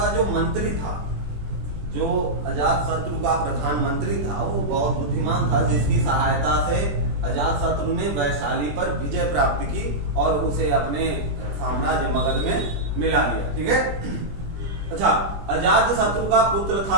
जो मंत्री था, जो अजातशत्रु का प्रधानमंत्री था, वो बहुत बुद्धिमान था, जिसकी सहायता से अजातशत्रु ने वैशाली पर विजय प्राप्त की और उसे अपने साम्राज्य मगध में मिला लिया, ठीक है। अच्छा, अजातशत्रु का पुत्र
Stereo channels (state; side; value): late; left; 21 ms